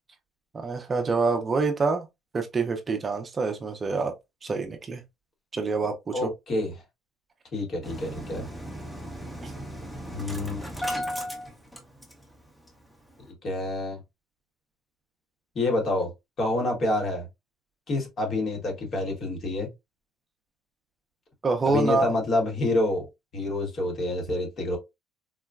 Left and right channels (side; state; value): both; normal; correlation 0.68